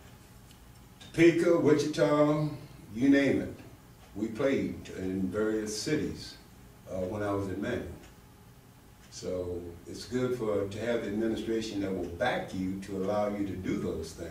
Topeka, Wichita, you name it. We played in various cities when I was at Manual. So it's good to have the administration that will back you to allow you to do those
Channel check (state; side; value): identical; both; correlation 1.00